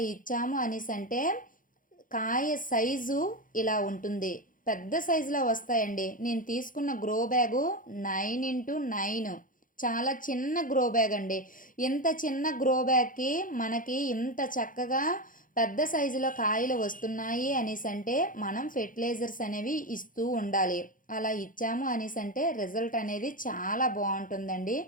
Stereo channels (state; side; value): late; right; 0.39 ms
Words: ఇచ్చాము అనేసంటే కాయ సైజు ఇలా ఉంటుంది. పెద్ద సైజులో వస్తాయండి. నేను తీసుకున్న గ్రో బ్యాగు 9x9, చాలా చిన్న గ్రో బ్యాగ్ అండి. ఇంత చిన్న గ్రో బ్యాగ్‌కి మనకి ఇంత చక్కగా పెద్ద సైజులో కాయలు వస్తున్నాయి అనేసంటే మనం ఫెర్టిలైజర్స్ అనేవి ఇస్తూ ఉండాలి. అలా ఇచ్చాము అనేసంటే రిజల్ట్ అనేది చాలా బావుంటుందండి.